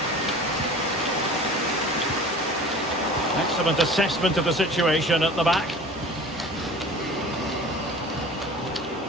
Excellent assessment of the situation at the back.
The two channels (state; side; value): normal; both; correlation 0.41